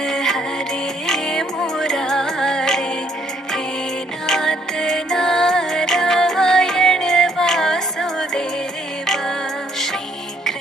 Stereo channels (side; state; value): both; normal; correlation 0.67